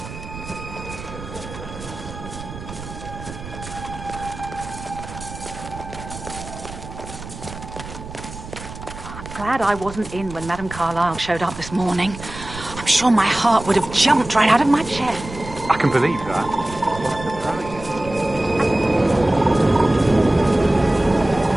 Glad I wasn't in when Madame Carlisle showed up this morning. I'm sure my heart would have jumped right out of my chest. I can believe that.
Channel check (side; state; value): right; noise; rumble, 12 dB below the sound